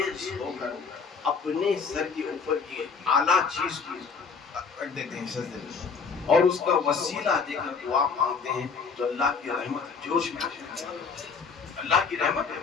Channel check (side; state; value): right; quieter; 5.4 dB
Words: होकर अपने सर के ऊपर की आला चीज को रख देते हैं सजदे में, और उसका वसीला देकर दुआ मांगते हैं, तो अल्लाह की रहमत जोश में आ जाती है, अल्लाह की रहमत